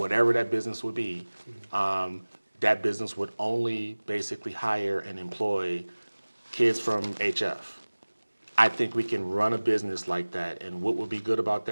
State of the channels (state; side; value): inverted; both; correlation -1.00